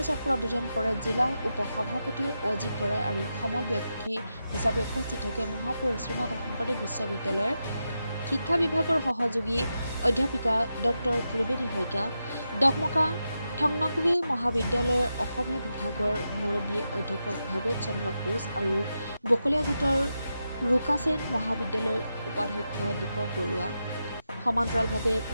চক্ৰত উদ্বোধন কৰে জিলা উপ-সভাপতি অজিত বৰাই আৰু সমল ব্যক্তি হিচাপে উপস্থিত থাকে মহাপুৰুষ শ্ৰীমন্ত শংকৰদেৱ বিশ্ববিদ্যালয়ৰ শিক্ষা বিভাগৰ সহযোগী অধ্যাপিকা ডক্টৰ ত্ৰিবেণী শইকীয়া, ডকমকা থংনকভি মহাবিদ্যালয়ৰ অসমীয়া বিভাগৰ মুৰব্বী অধ্যাপক ভৱেশ চন্দ্ৰ কোচ আৰু বকলিয়াঘাটৰ ৰুকাছেন মহাবিদ্যালয়ৰ উপাধ্যক্ষ দীপক বৰুৱা। সমান্তৰালভাৱে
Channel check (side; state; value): both; inverted; correlation -0.88